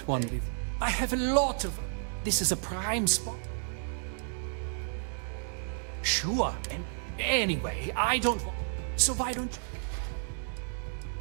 one before. I have a lot of them. This is a prime spot. Sure. And anyway, I don't want... So why don't you...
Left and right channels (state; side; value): silent; left; 57 dB below the other